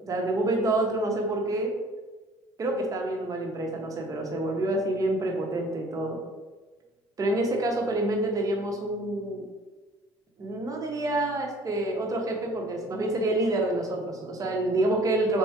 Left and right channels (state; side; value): normal; both; correlation 0.52